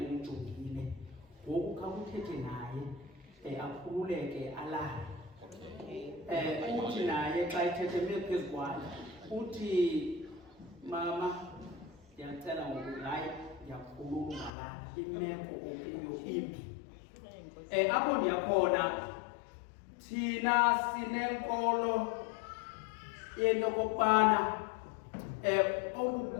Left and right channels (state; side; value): drops out; right; at 14.5 s